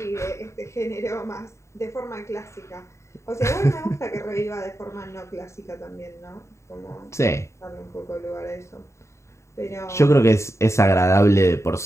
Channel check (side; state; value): right; late; 0.14 ms